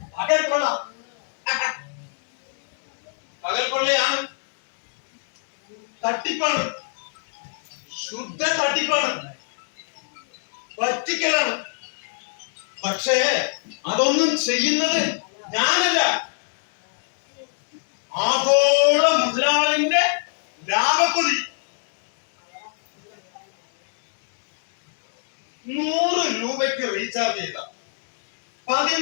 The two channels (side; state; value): right; silent; digital silence